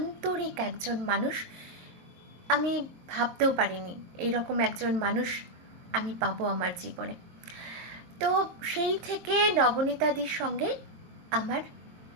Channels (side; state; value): left; late; 22 ms